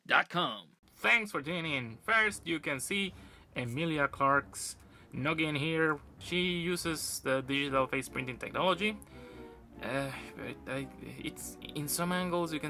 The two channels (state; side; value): identical; both; correlation 1.00